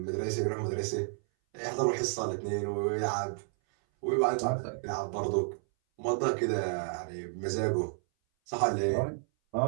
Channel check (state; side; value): silent; left; 57 dB below the other